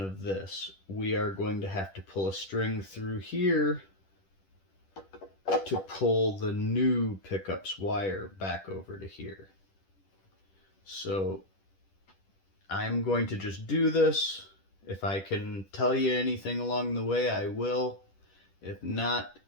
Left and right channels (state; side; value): late; right; 10 ms